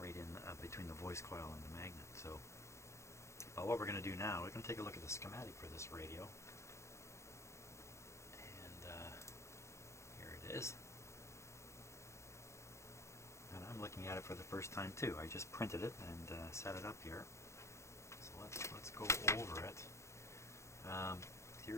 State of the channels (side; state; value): right; late; 0.14 ms